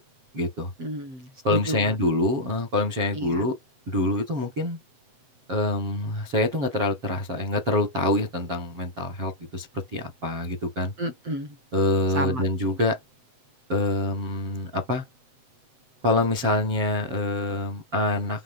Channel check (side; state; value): left; late; 7.8 ms